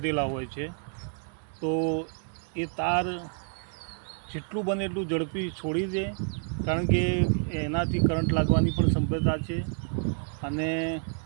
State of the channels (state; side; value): silent; left; 59 dB below the other